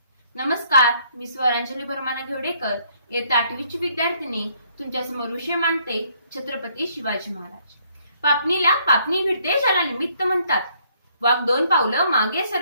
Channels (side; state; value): both; inverted; correlation -0.66